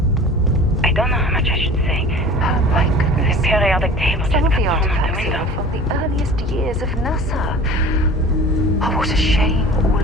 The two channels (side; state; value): both; normal; correlation 0.42